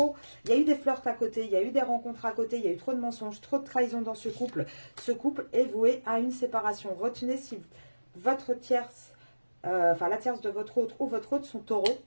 des flirts à côté, il y a eu des rencontres à côté, il y a eu trop de mensonges, trop de trahison dans ce couple. Ce couple est voué à une séparation. Retenez si votre tierce, la tierce de votre autre ou votre autre sont taureaux.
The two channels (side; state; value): both; inverted; correlation -1.00